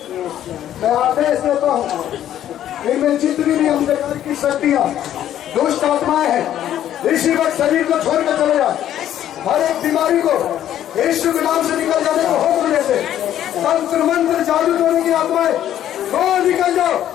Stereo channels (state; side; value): quieter; right; 11.4 dB